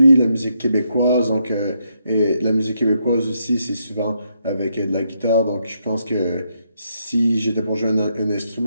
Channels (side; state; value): both; inverted; correlation -0.78